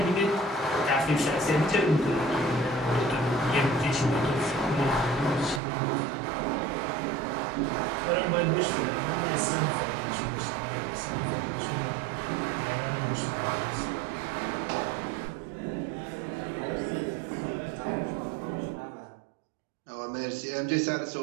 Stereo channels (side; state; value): left; drops out; at 5.6 s